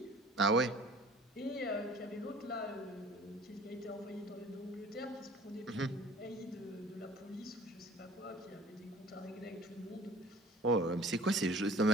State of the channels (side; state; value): both; normal; correlation 0.49